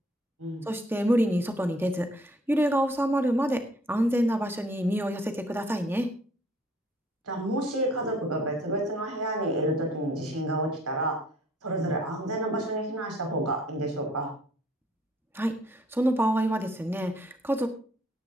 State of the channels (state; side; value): normal; both; correlation 0.60